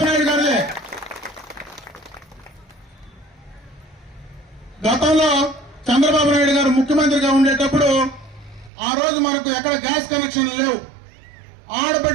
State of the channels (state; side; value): drops out; left; at 8.7 s